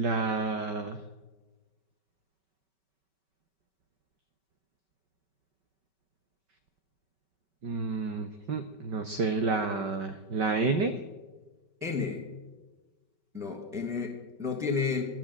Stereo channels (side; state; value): left; late; 5.2 ms